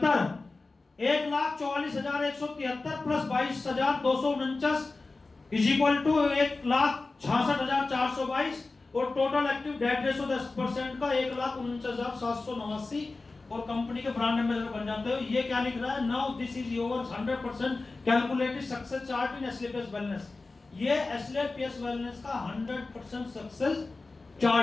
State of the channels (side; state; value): right; quieter; 3.6 dB